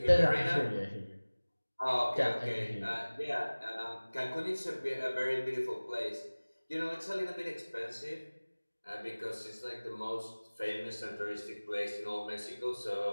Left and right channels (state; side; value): inverted; both; correlation -1.00